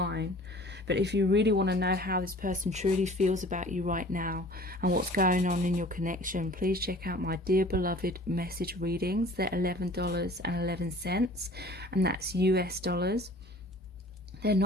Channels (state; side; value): normal; both; correlation 0.47